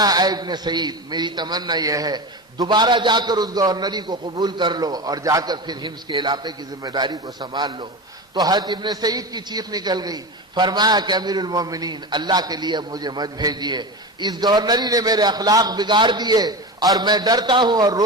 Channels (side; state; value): both; normal; correlation 0.24